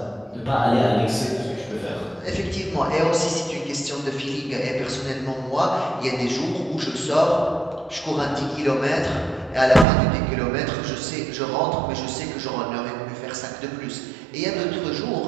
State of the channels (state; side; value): drops out; left; at 9.9 s